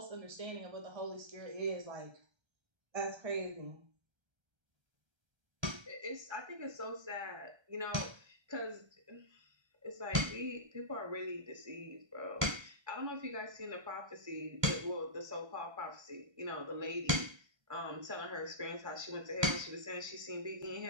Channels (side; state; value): left; late; 1.3 ms